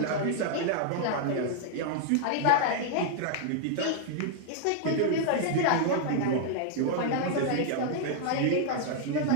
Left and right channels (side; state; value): both; different; correlation 0.00